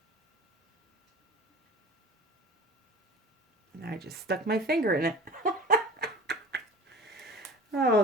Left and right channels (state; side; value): normal; both; correlation 0.38